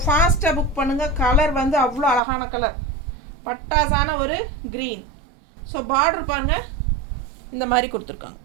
ஃபாஸ்ட்டாக புக் பண்ணுங்கள். கலர் வந்து அவ்வளோ அழகான கலர். பட்டாசான ஒரு க்ரீன். ஸோ பார்டர் பாருங்கள், இந்த மாதிரி கொடுத்துருக்காங்க.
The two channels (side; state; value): left; drops out; at 2.2 s